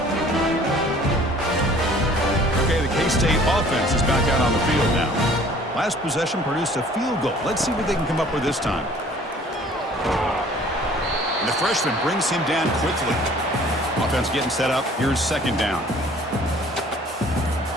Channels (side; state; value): both; normal; correlation 0.53